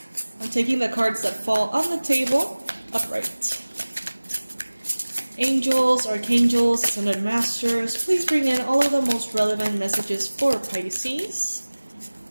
I'm taking the cards that fall on the table upright. Angels, Archangels, Ascended Masters, please bring in all of the most relevant messages for Pisces.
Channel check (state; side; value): inverted; both; correlation -1.00